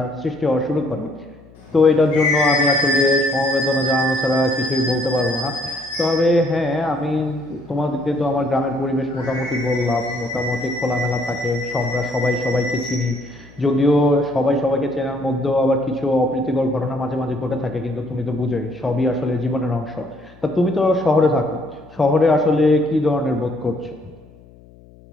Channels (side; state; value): left; noise; hum, 24 dB below the sound